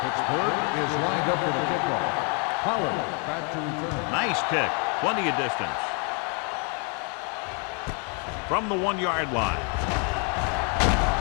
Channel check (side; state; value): right; quieter; 37.3 dB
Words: is lined up for the kickoff. Pollard back to return. Nice kick. Plenty of distance. from the 1-yard line.